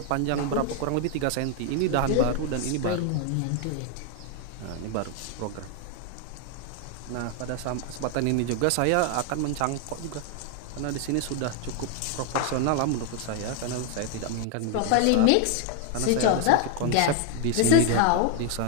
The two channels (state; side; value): different; both; correlation 0.00